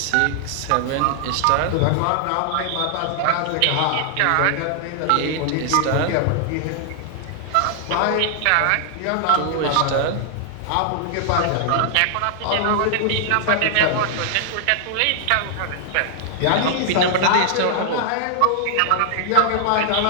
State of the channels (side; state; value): both; different; correlation 0.00